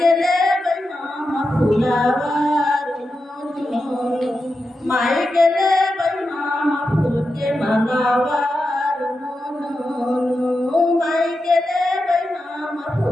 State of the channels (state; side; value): normal; both; correlation 0.89